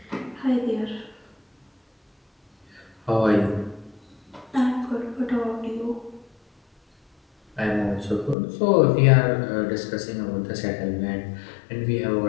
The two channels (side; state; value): right; drops out; at 8.3 s